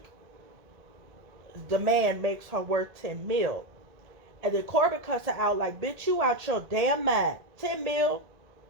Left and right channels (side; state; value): left; late; 1.7 ms